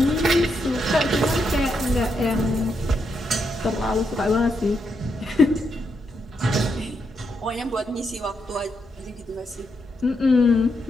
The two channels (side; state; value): both; normal; correlation 0.81